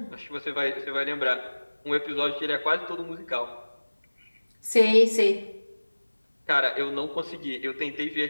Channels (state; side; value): inverted; both; correlation -1.00